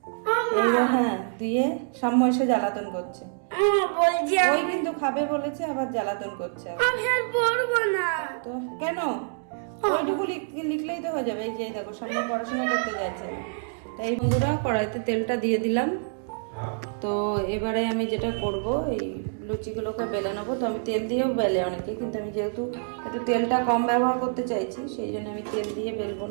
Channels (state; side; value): silent; left; digital silence